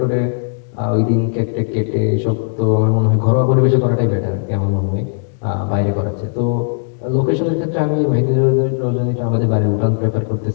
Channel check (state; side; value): silent; right; digital silence